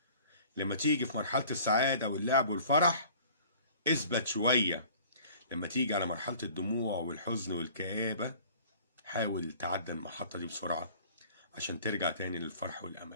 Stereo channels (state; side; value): inverted; both; correlation -0.49